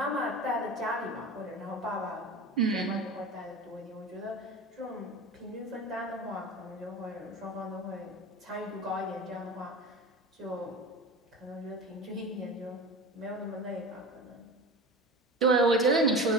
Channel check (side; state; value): both; normal; correlation 0.32